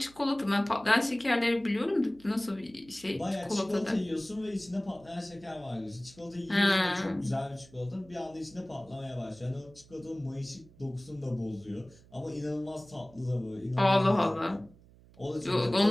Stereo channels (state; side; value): noise; right; hum, 25 dB below the sound